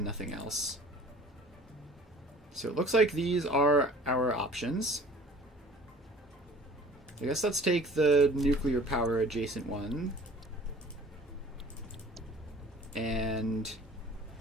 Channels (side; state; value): both; normal; correlation 0.48